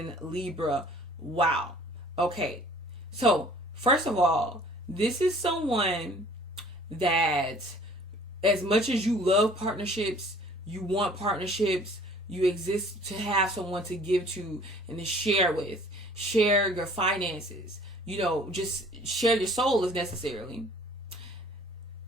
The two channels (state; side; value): normal; both; correlation 0.52